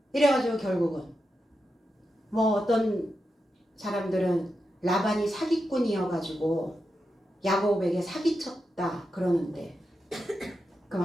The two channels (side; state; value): both; normal; correlation 0.88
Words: 이래가지고 결국은 뭐 어떤 사람들은 라반이 사기꾼이어가지고 야곱에게 사기쳤다 그러는데, 그럼